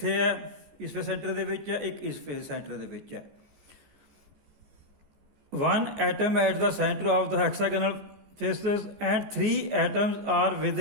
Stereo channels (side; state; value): left; late; 14 ms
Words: ਹੈ ਇਸ ਫੇਸ ਸੈਂਟਰ ਦੇ ਵਿੱਚ ਹੈ, ਇੱਕ ਇਸ ਫੇਸ ਸੈਂਟਰ ਦੇ ਵਿੱਚ ਹੈ। One atom at the center of the hexagonal faces and 3 atoms are